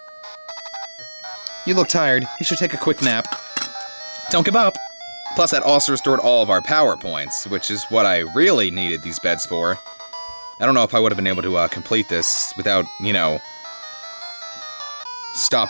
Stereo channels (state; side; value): inverted; both; correlation -1.00